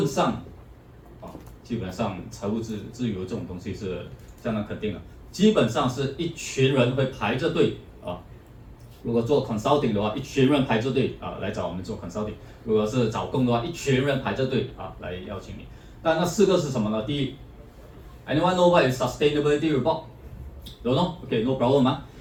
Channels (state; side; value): identical; both; correlation 1.00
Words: 上，基本上财务自由这种东西是相当肯定的。基本上是一群人会排着队如果做 consulting 的话，一群人排着队来找我们做 consulting。如果是找工的话，一群人排着队来邀请你。但那4个是什么呢？第一 ，Anyone know what is sustainability report? Don't know? Okay, no problem.